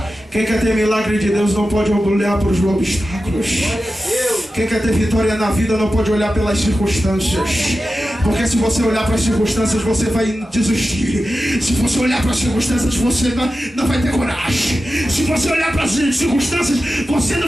Quem quer ter milagre de Deus não pode olhar para os obstáculos. Quem quer ter vitória na vida não pode olhar pelas circunstâncias. Porque se você olhar para as circunstâncias, você vai desistir. Se você olhar para as circunstâncias, você não vai ter coragem. Se você olhar para as circunstâncias, você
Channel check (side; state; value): both; normal; correlation 0.93